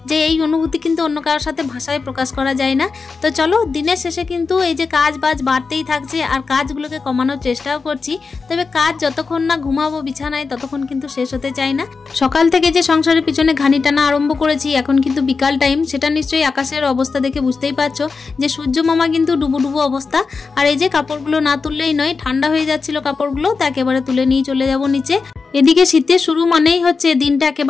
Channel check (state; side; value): quieter; right; 4.7 dB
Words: যে এই অনুভূতি কিন্তু অন্য কারোর সাথে ভাষায় প্রকাশ করা যায় না। তো চলো, দিনের শেষে কিন্তু এই যে কাজ বাজ বাড়তেই থাকছে আর কাজগুলোকে কমানোর চেষ্টাও করছি। তবে কাজ যতক্ষণ না ঘুমাবো বিছানায় ততক্ষণ কিন্তু শেষ হতে চায় না। সকাল থেকে যে সংসারের পিছনে ঘানি টানা আরম্ভ করেছি, এখন কিন্তু বিকাল টাইম, সেটা নিশ্চয়ই আকাশের অবস্থা দেখে বুঝতেই পারছো যে সূর্য মামা কিন্তু ডুবো অবস্থা। আর এই যে কাপড়গুলো না তুললেই নয়, ঠান্ডা হয়ে যাচ্ছিল কাপড়গুলো, তা একেবারে তুলে নিয়ে চলে যাব নিচে। এদিকে শীতের শুরু মানেই হচ্ছে দিনটা